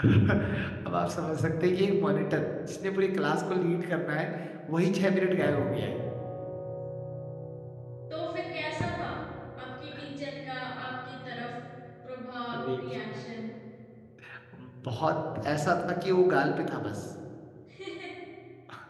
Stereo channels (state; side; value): identical; both; correlation 1.00